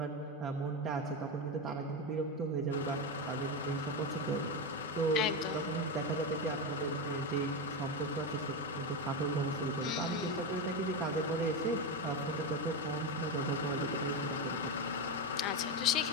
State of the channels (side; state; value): both; normal; correlation 0.13